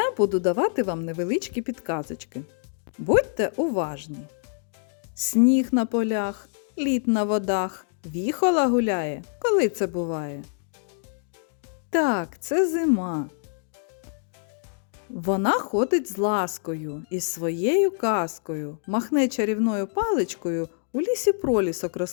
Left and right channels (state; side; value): silent; right; digital silence